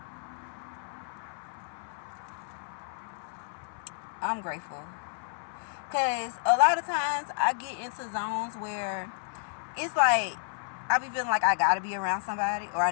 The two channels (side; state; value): right; silent; 57 dB below the other